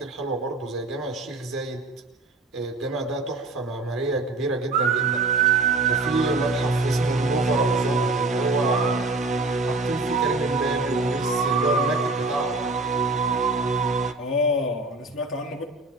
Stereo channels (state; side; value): quieter; left; 3.3 dB